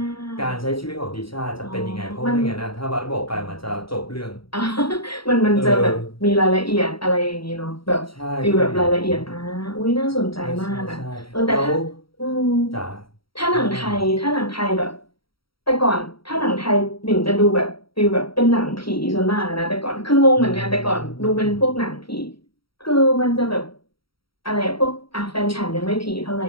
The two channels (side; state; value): right; late; 0.75 ms